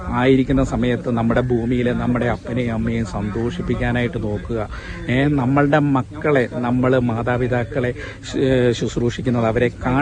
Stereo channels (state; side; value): identical; both; correlation 1.00